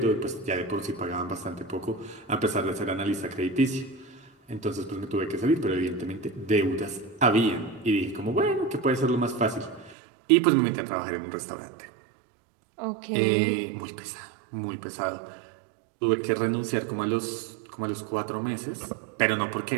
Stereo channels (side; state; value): left; drops out; at 10.0 s